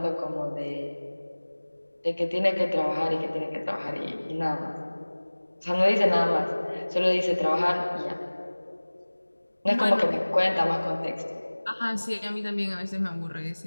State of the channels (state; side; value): inverted; both; correlation -1.00